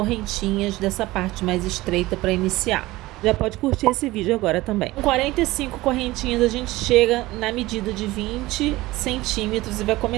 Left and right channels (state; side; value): quieter; left; 18.8 dB